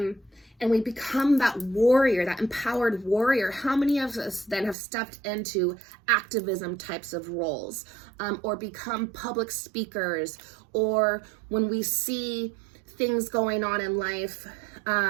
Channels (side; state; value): left; drops out; at 4.8 s